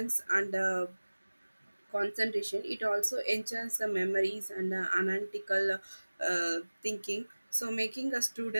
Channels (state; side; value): inverted; both; correlation -1.00